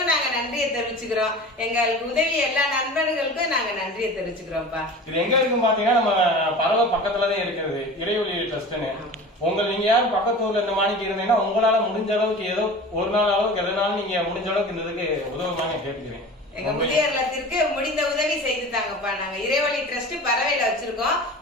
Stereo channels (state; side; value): normal; both; correlation 0.37